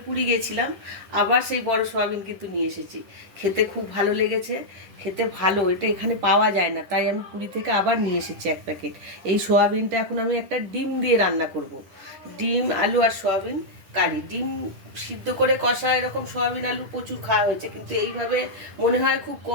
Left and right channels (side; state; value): left; late; 10 ms